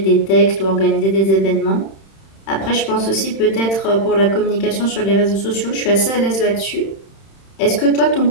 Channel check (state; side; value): late; right; 31 ms